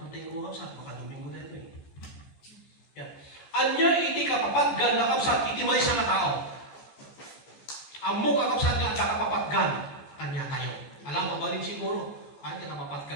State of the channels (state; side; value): late; right; 14 ms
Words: ko kapsat. Makaduming mo na ito eh. Yan. Anya iti kapapaggan nga kapsat. Iti may sa tao. Amo kakapsat nga at kapapaggan kanya tayo. Alam mo ba rin siguro? Kanya